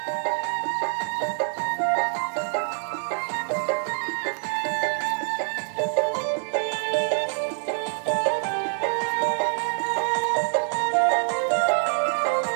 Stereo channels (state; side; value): silent; left; 60 dB below the other